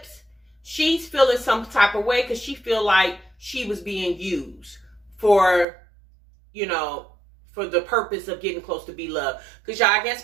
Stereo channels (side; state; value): left; drops out; at 5.7 s